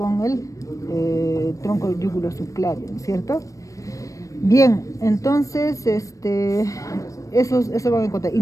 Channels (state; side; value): late; right; 0.16 ms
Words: el tronco yugulo subclavio, ¿no es cierto? Bien, entonces eso van a encontrar. Y